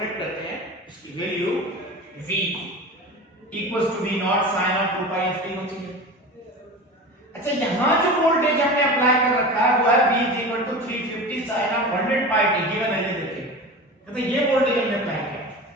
करते हैं, इसकी value V equals to V not sin of 2 pi ft होती है। अच्छा यहां जो वोल्टेज हमने अप्लाई कर रखा है वो है V 350 sin of 100 pi t given है, ये देखिए तो ये वोल्टेज हमने अप्लाई किया।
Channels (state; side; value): normal; both; correlation 0.31